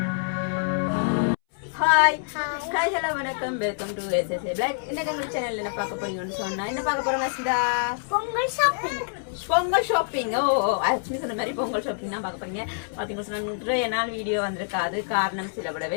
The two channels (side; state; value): right; silent; 61 dB below the other